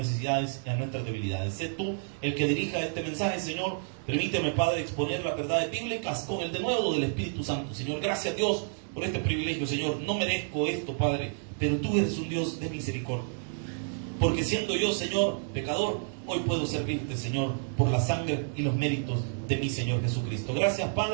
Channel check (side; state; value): left; silent; digital silence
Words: y a nuestras debilidades. Sé tú el que dirija este mensaje, Señor. Permíteme, Padre, exponer las verdades bíblicas con el denuedo del Espíritu Santo. Señor, gracias, Dios, por este privilegio, Señor. No merezco esto, Padre, pero tú eres un Dios de misericordia. Porque siendo yo, Señor, pecador, hoy puedo servirte, Señor, por la sangre y los méritos de mi Señor Jesucristo. Gracias,